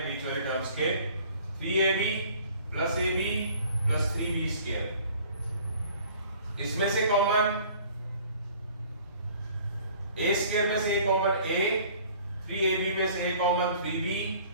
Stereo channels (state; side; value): inverted; both; correlation -0.52